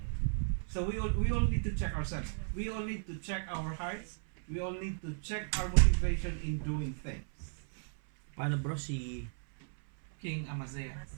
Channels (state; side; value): silent; left; 54 dB below the other